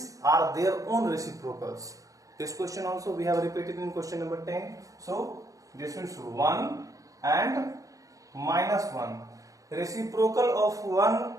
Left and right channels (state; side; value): late; left; 0.16 ms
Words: are their own reciprocals. This question also we have repeated in question number 10. So this is 1 and minus 1. Reciprocal of 1